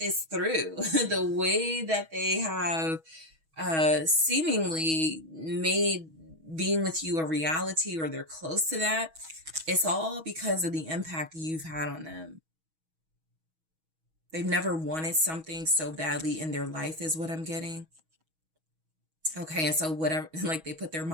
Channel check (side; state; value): left; late; 6.2 ms